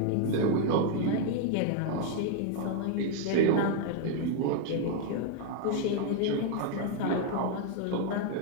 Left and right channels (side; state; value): both; different; correlation 0.00